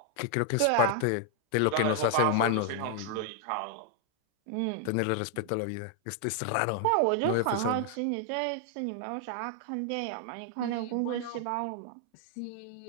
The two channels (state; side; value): different; both; correlation 0.00